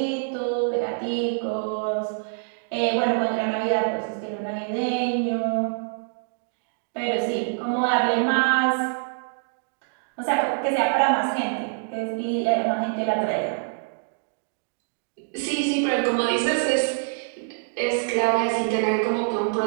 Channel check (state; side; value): silent; left; digital silence